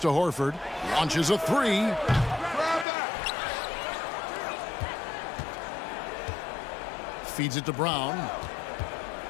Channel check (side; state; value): right; drops out; at 2.9 s